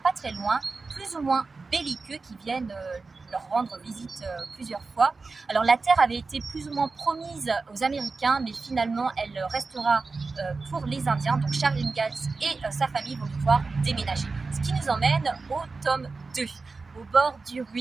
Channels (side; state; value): left; quieter; 4.1 dB